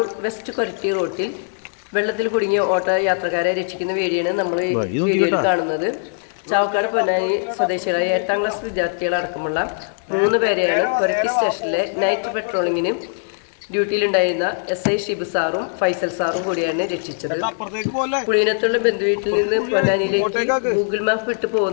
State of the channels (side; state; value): right; silent; digital silence